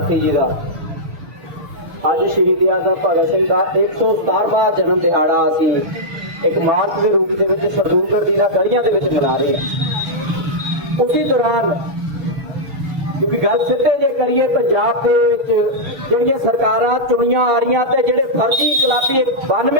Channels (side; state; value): left; late; 6.6 ms